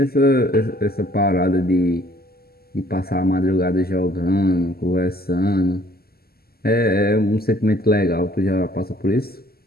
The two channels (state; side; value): late; right; 0.45 ms